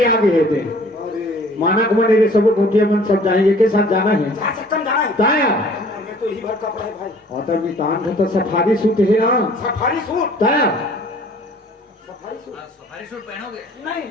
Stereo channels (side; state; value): both; normal; correlation 0.53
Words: आगे है दे अरे माना को मन सब गोटिया मन सब जाएंगे के साथ जाना है जा सकता जाना है। ताया मैं तो ही भर कपड़ा है भाई। और तब मितान का तो सफारी सूट है ना सफारी सूट, ताया सफारी सूट सफारी सूट पहनोगे नहीं,